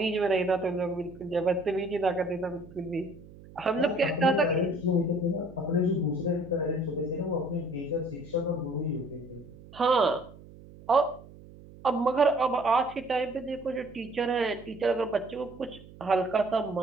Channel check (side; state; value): right; noise; hum, 20 dB below the sound